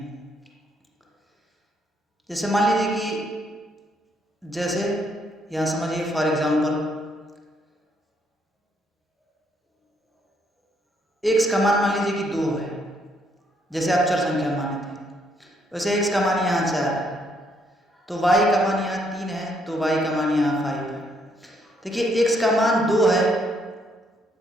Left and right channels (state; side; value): normal; both; correlation 0.72